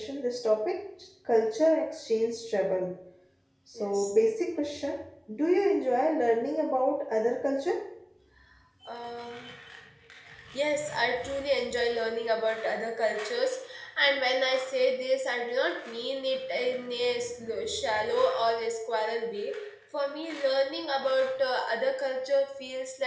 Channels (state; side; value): identical; both; correlation 1.00